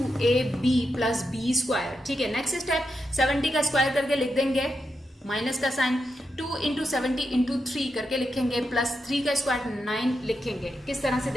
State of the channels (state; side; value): normal; both; correlation 0.86